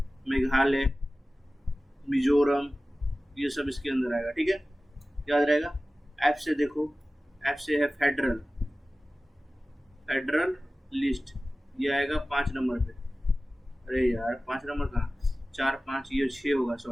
मेघालय, मिजोरम, ये सब इसके अंदर आएगा, ठीक है, याद रहेगा। एफ से देखो, एफ से है फेडरल लिस्ट, ये आएगा 5 नंबर पे। अरे यार 5 नंबर कहाँ, 4 5, ये 6 होगा,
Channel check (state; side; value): normal; both; correlation 0.96